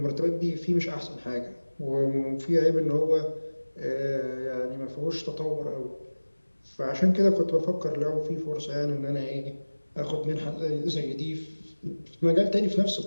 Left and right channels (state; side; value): inverted; both; correlation -1.00